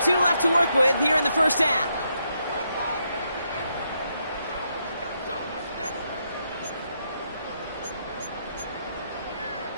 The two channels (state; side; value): inverted; both; correlation -0.79